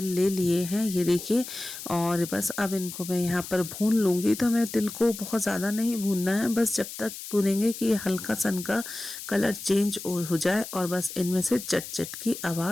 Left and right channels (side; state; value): left; noise; hiss, 10 dB below the sound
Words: ले लिए हैं, ये देखिए। और बस अब इनको मैं यहाँ पर भून लूँगी। तो हमें तिल को बहुत ज़्यादा नहीं भूनना है, बस जब तक भूनेंगे कि ये हल्का सन का कलर चेंज हो जाए और बस इनमें से चट चट की